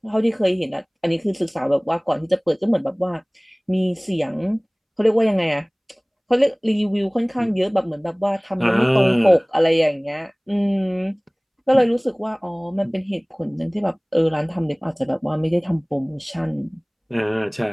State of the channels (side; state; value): both; identical; correlation 1.00